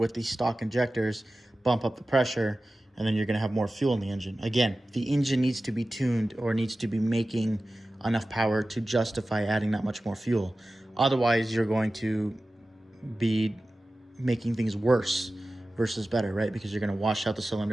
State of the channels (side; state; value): both; normal; correlation 0.95